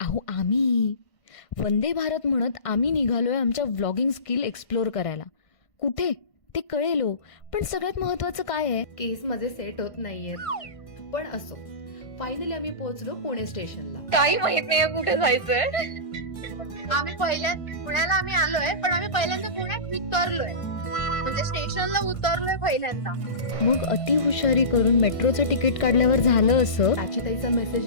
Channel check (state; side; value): late; right; 1.5 ms